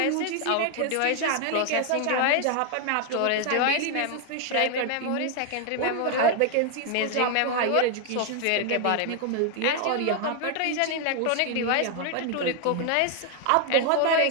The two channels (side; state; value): both; different; correlation 0.00